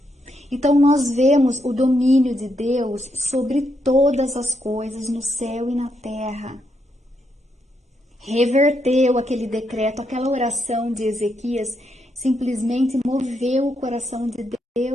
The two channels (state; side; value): normal; both; correlation 0.79